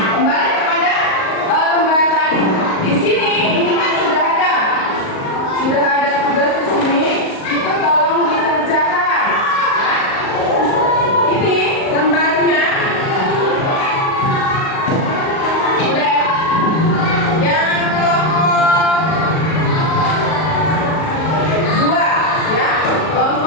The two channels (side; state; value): right; late; 38 ms